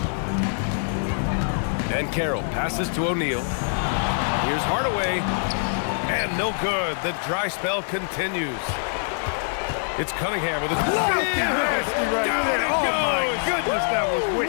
And Carroll passes to O'Neal. Here's Hardaway. And no good. The dry spell continues. It's Cunningham with his Nasty right there. Oh, my goodness, that was wicked.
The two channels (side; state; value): right; silent; 62 dB below the other